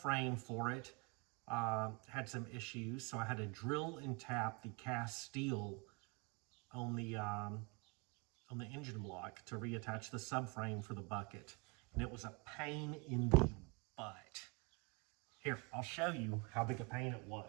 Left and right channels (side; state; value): left; quieter; 28.3 dB